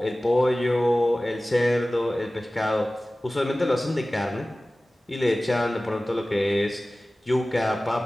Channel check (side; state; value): both; normal; correlation 0.97